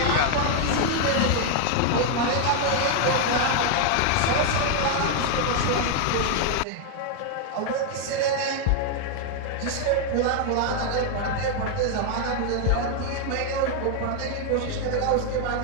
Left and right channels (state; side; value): different; both; correlation 0.00